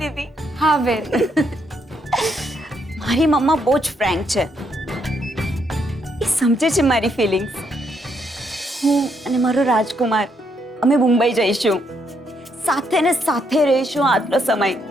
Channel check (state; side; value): normal; both; correlation 0.75